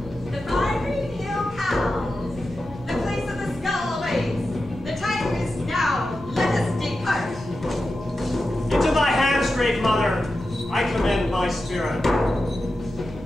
The fiery hill cows, the place of the skull awaits. The time is now. Let us depart. Into thy hands, great mother, I commend my spirit.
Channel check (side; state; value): right; noise; hum, 17 dB below the sound